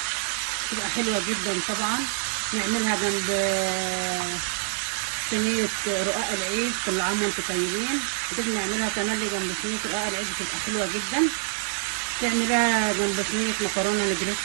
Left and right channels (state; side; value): silent; left; 61 dB below the other